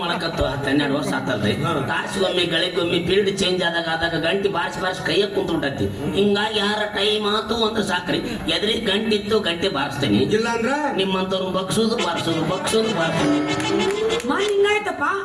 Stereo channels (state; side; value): identical; both; correlation 1.00